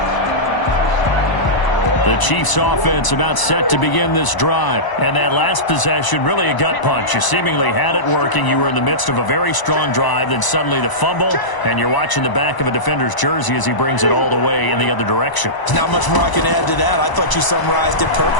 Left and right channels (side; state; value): right; late; 1.0 ms